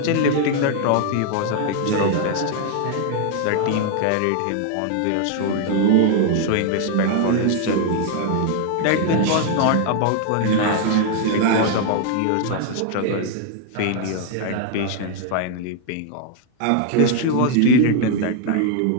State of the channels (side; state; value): both; different; correlation 0.00